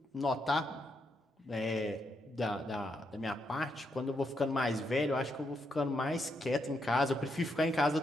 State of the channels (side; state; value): both; normal; correlation 0.80